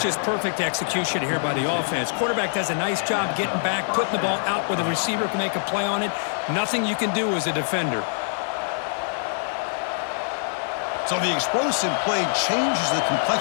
just perfect execution here by the offense. Quarterback does a nice job getting back, putting the ball out where the receiver can make a play on it. Nothing you can do as a defender. So the explosive play changes the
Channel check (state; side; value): silent; right; digital silence